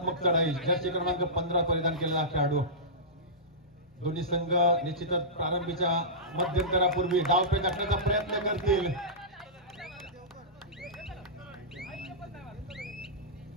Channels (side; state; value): both; normal; correlation -0.17